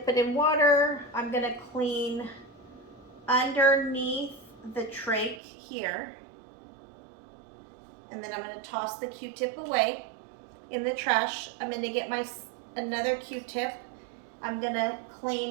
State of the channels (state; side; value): drops out; left; at 5.4 s